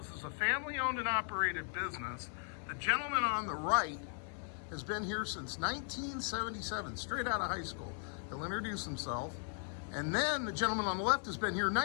a family-owned and operated business. The gentleman on the right has been here since 1977, straight out of high school. He'll introduce himself. And then the gentleman on the left has been here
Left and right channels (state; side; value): silent; right; 53 dB below the other